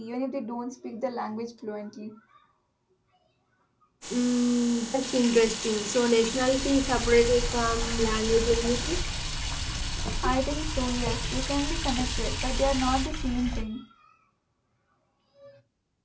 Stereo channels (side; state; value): both; identical; correlation 1.00